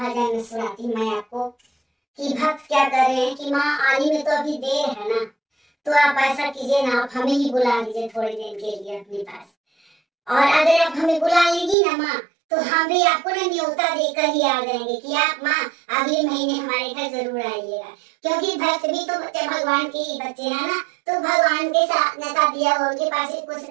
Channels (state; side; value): drops out; left; at 11.8 s